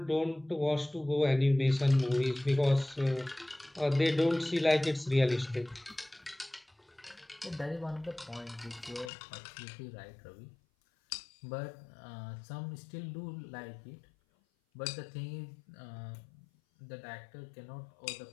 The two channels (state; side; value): drops out; right; at 9.1 s